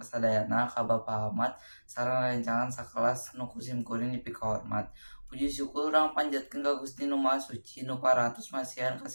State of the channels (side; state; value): both; inverted; correlation -1.00